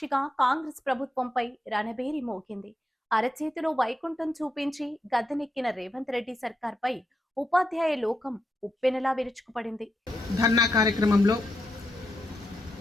కాంగ్రెస్ ప్రభుత్వంపై రణబేరి మోగింది. అరచేతిలో వైకుంఠం చూపించి గద్దెనెక్కిన రేవంత్ రెడ్డి సర్కార్పై ఉపాధ్యాయ లోకం ఉప్పెనలా విరుచుకుపడింది. ధర్నా కార్యక్రమంలో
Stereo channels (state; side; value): normal; both; correlation 0.84